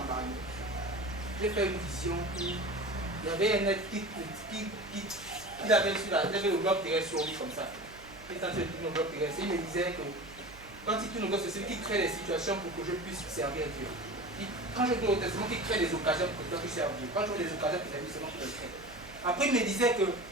J'ai fait une vision où il y avait un être qui avait le bloc terrestre sur lui comme ça. Il était en train de tourner le bloc terrestre. Il me disait que quand il tourne le bloc terrestre, il crée des situations pour que je puisse servir Dieu. Quand je dois au testament, il crée des occasions pour que je puisse servir Dieu. Quand je vois des occasions pour servir, c'est moi qui les crée. Après, il me disait que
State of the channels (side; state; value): right; noise; hum, 21 dB below the sound